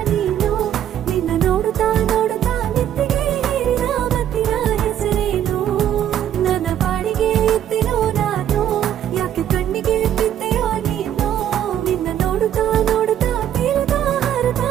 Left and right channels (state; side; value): quieter; left; 10.6 dB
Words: ನೀನು, ನಿನ್ನ ನೋಡುತ್ತಾ ನೋಡುತ್ತಾ ನೆತ್ತಿಗೆ ಏರಿದ ಮತ್ತಿನ ಹೆಸರೇನು, ನನ್ನ ಪಾಡಿಗೆ ಎತ್ತಿನೋ ನಾನು, ಯಾಕೆ ಕಣ್ಣಿಗೆ ಬಿದ್ದೆಯೋ ನೀನು, ನಿನ್ನ ನೋಡುತ್ತಾ ನೋಡುತ್ತಾ ತೀರದ ಹರದ